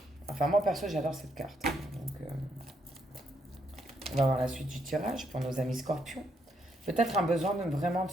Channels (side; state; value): both; normal; correlation 0.75